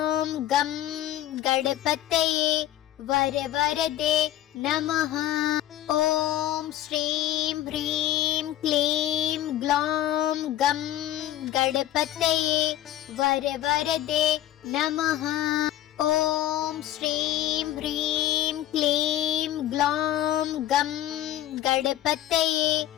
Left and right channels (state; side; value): quieter; right; 12.9 dB